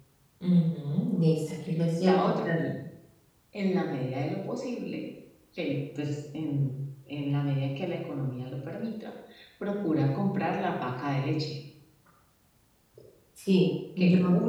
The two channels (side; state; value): both; identical; correlation 1.00